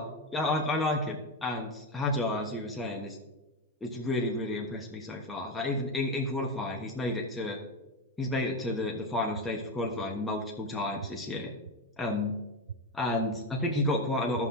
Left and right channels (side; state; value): both; normal; correlation 0.14